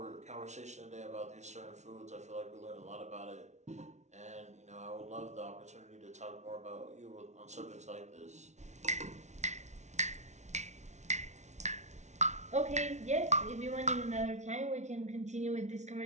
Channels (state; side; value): late; left; 0.33 ms